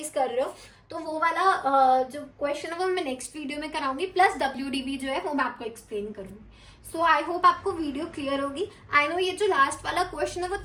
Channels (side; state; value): both; identical; correlation 1.00